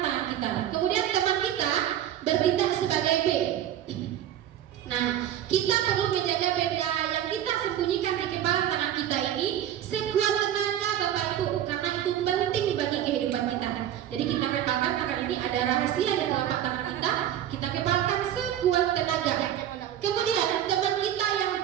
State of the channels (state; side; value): quieter; left; 11.1 dB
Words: kita. Kemudian teman kita bertindak sebagai B. Nah, kita perlu menjaga benda yang kita sembunyikan di kepala tangan kita ini sekuat tenaga Bapak Ibu, karena itu penting bagi kehidupan kita. Jadi kita kepalkan tangan ini, ada rahasia di telapak tangan kita kepalkan sekuat tenaga. Kemudian teman kita yang